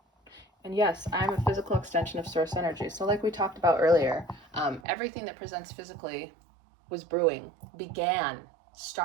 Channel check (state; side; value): drops out; left; at 4.8 s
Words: And yes, I'm a physical extension of source energy. So like we talked about earlier, everything that presents physically was brewing,